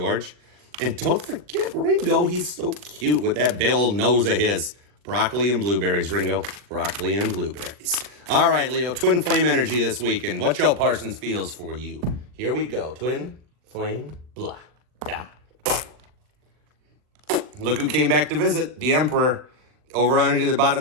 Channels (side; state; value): left; late; 40 ms